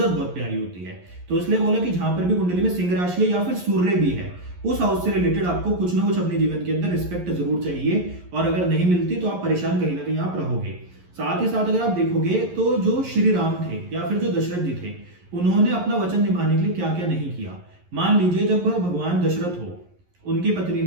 बहुत प्यारी होती है। तो इसलिए बोला कि जहां पर भी कुंडली में सिंह राशि है या फिर सूर्य भी है उस हाउस से रिलेटेड आपको कुछ ना कुछ अपने जीवन के अंदर रिस्पेक्ट जरूर चाहिए और अगर नहीं मिलती तो आप परेशान कहीं ना कहीं आप रहोगे। साथ ही साथ अगर आप देखोगे तो जो श्री राम थे या फिर जो दशरथ जी थे उन्होंने अपना वचन निभाने के लिए क्या क्या नहीं किया। मान लीजिए जब भगवान दशरथ हो उनकी पत्नी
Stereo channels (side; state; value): left; late; 11 ms